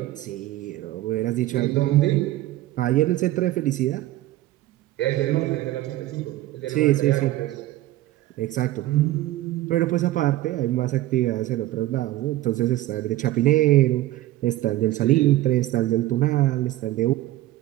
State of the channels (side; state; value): left; quieter; 15.9 dB